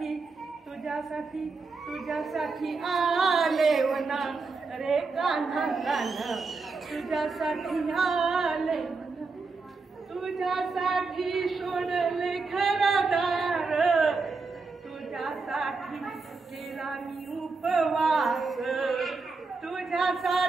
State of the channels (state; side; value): quieter; left; 4.2 dB